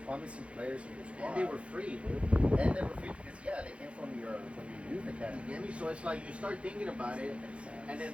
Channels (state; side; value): late; left; 0.061 ms